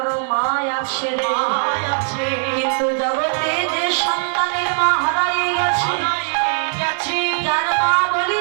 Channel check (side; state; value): left; silent; 65 dB below the other